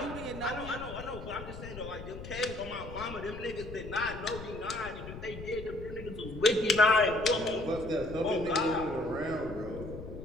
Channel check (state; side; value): noise; left; rumble, 11 dB below the sound